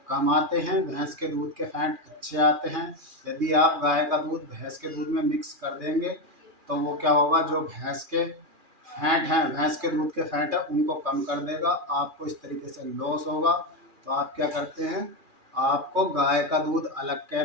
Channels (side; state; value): left; late; 2.4 ms